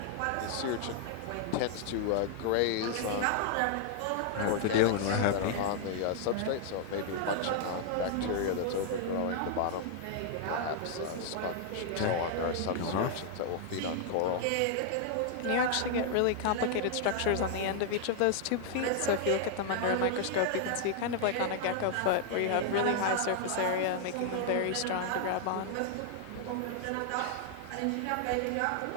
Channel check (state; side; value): different; both; correlation 0.00